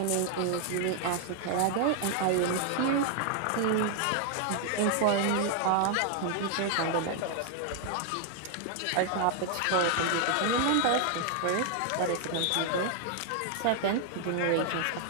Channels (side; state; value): both; different; correlation 0.00